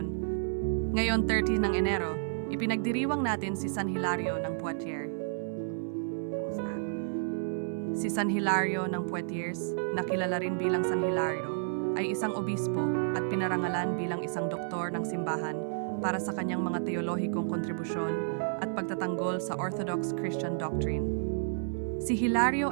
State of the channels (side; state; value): left; silent; 57 dB below the other